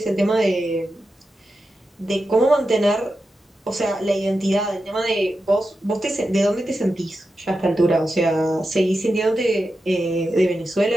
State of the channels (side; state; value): both; normal; correlation 0.90